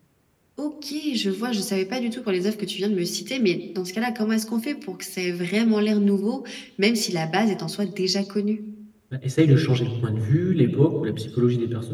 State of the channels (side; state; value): both; identical; correlation 1.00